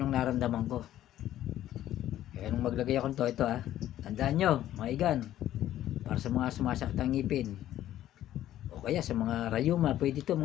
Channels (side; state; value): right; quieter; 12.8 dB